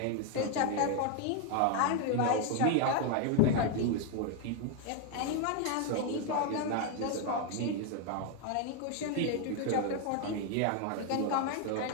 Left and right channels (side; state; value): both; different; correlation 0.01